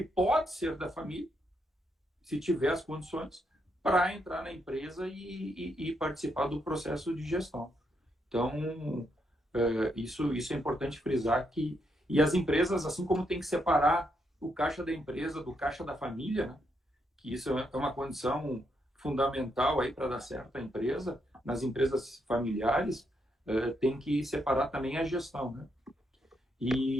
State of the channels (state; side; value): normal; both; correlation 0.78